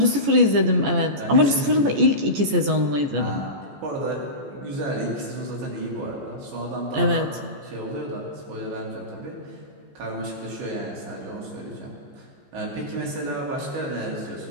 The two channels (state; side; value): late; left; 14 ms